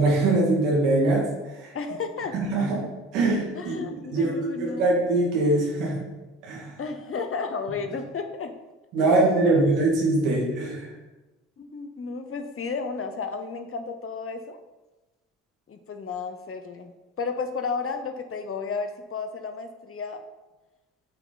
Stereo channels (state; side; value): normal; both; correlation 0.37